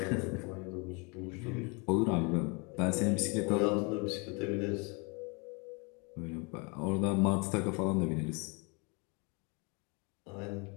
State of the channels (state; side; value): quieter; right; 31.2 dB